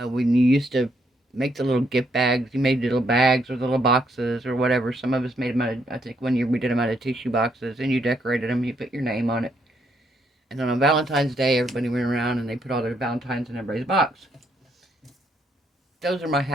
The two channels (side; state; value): both; normal; correlation 0.73